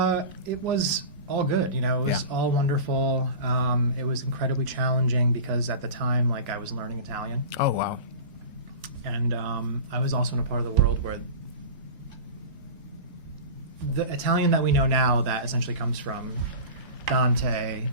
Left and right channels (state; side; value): inverted; both; correlation -0.32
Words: It was all good. It was Yeah. all wonderful. It was incredibly challenging because at the time, like, I was learning Italian, Oh wow. and I was also in a part of the world where the Italian that we know now, that essentially comes from Dante